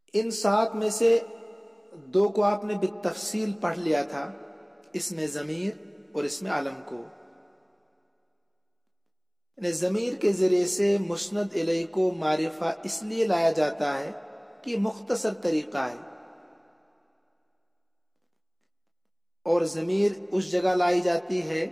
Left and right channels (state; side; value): identical; both; correlation 1.00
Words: ان 7 میں سے 2 کو آپ نے بالتفصیل پڑھ لیا تھا، اسم ضمیر اور اسم علم کو۔ یعنی ضمیر کے ذریعے سے مسند الیہ کو معرفہ اس لیے لایا جاتا ہے کہ یہ مختصر طریقہ ہے، اور ضمیر اس جگہ لائی جاتی ہے